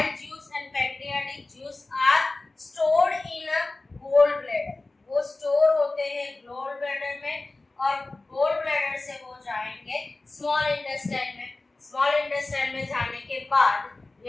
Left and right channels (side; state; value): right; quieter; 3.2 dB